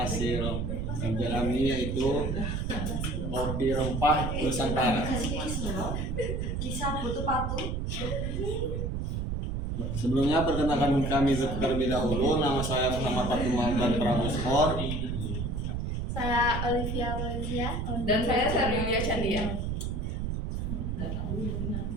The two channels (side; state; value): right; noise; rumble, 2 dB below the sound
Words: kerja kami, yaitu kopi rempah Nusantara. Sebelumnya perkenalkan kami terlebih dahulu. Nama saya Muhammad Fatul Mahdan Pramuskor. Saya Olivia Valencia. Dan saya Yulia Chandia.